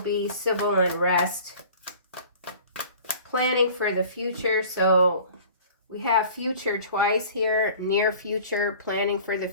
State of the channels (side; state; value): both; inverted; correlation -0.46